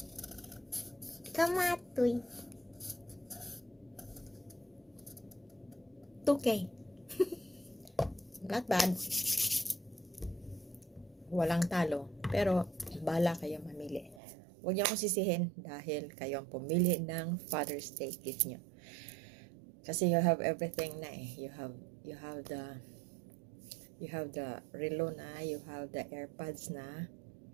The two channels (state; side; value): drops out; left; at 14.2 s